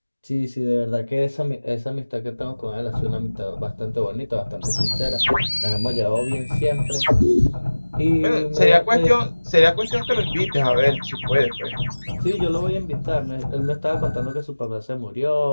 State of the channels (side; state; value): both; inverted; correlation -1.00